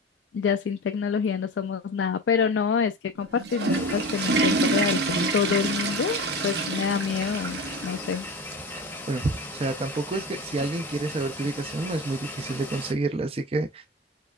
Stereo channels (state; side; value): normal; both; correlation 0.31